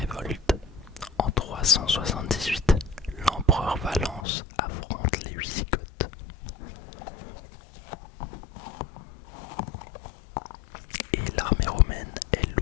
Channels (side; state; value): right; drops out; at 4.2 s